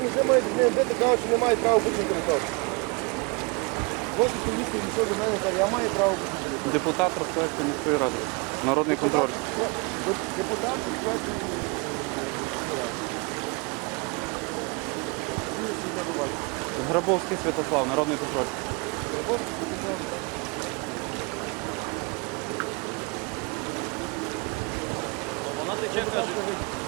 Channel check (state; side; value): quieter; left; 30.7 dB